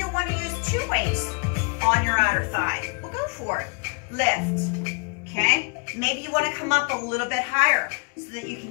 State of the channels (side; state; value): right; quieter; 36.7 dB